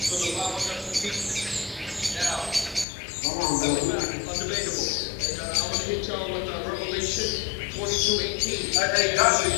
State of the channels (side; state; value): right; drops out; at 2.9 s